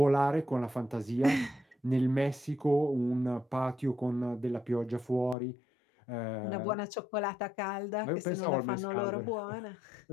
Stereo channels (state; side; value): drops out; right; at 5.4 s